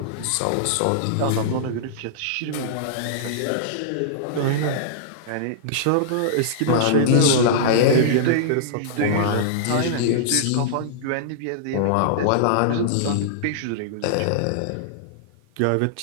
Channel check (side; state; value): both; different; correlation -0.02